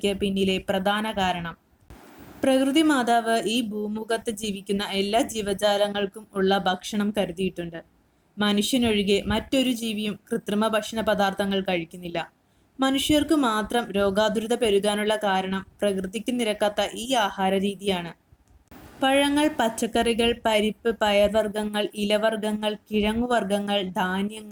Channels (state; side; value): identical; both; correlation 1.00